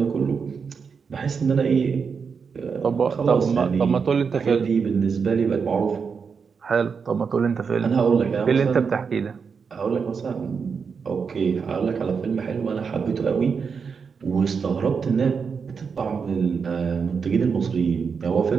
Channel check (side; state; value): left; quieter; 5.8 dB